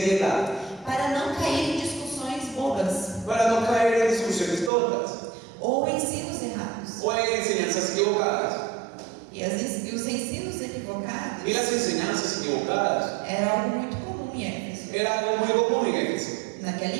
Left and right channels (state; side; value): drops out; left; at 4.7 s